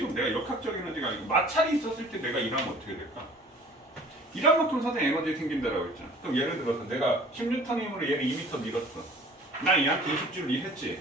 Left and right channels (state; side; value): normal; both; correlation 0.48